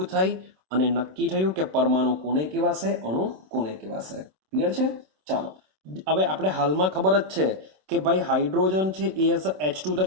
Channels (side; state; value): left; late; 27 ms